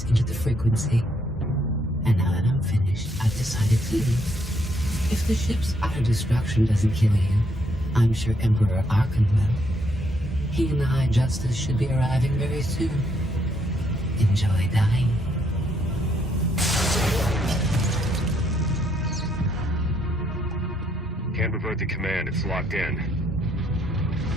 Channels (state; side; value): normal; both; correlation 0.72